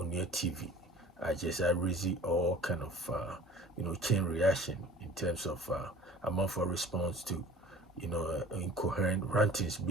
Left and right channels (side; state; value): both; normal; correlation 0.46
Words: your TV. I raise all kind of chain reaction in terms of amount for response to incoherent rantings